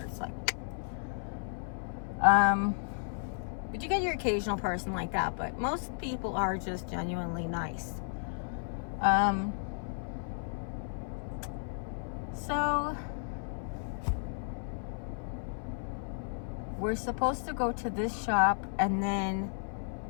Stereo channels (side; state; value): right; silent; 55 dB below the other